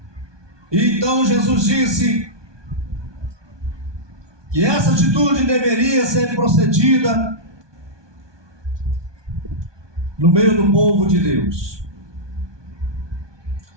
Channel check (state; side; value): late; left; 1.2 ms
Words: Então Jesus disse que essa atitude deveria ser procedida no meio do povo de Deus.